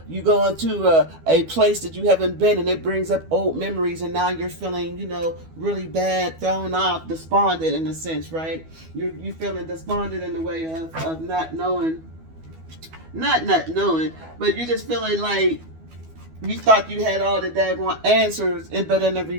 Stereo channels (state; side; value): late; left; 12 ms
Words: go into a place that you haven't been and it brings up old memories and now you're feeling, really bad, thrown off, despondent in a sense, right? You're feeling despondent in the way of not knowing. Not knowing, but you're just feeling like you thought you had all the daggone answers, but in the